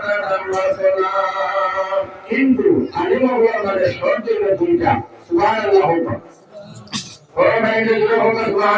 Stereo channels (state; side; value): identical; both; correlation 1.00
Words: তার দাম বাড়তো না কিন্তু আলিম আমাদের শর্ত হলো দুইটা সুবহানাল্লাহ হোক ও ভাই যে হোক